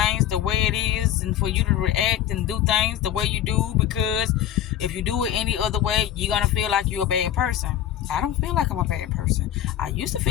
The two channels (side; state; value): right; quieter; 11.2 dB